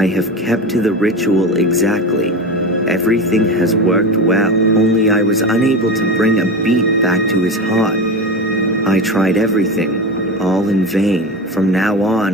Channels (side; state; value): both; normal; correlation 0.23